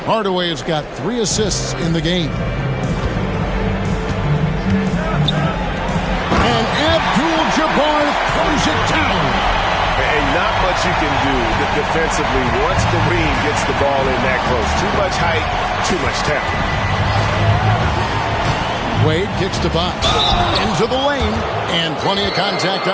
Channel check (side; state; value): both; identical; correlation 1.00